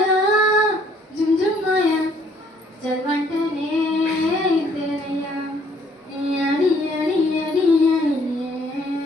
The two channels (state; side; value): normal; both; correlation 0.63